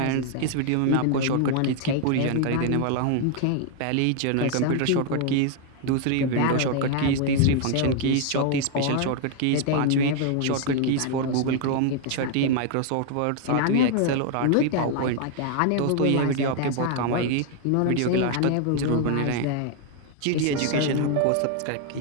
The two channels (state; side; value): different; both; correlation 0.00